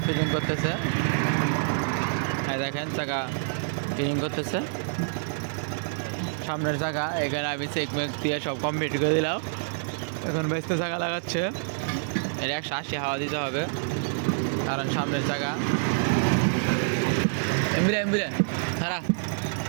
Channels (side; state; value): left; silent; digital silence